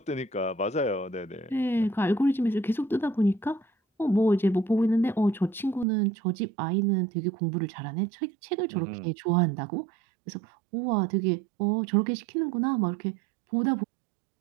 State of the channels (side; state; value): left; drops out; at 5.9 s